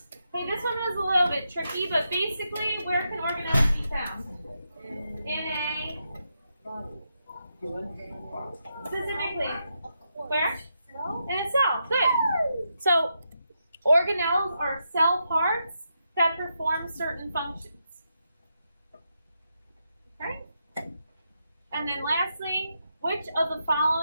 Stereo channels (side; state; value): both; inverted; correlation -0.83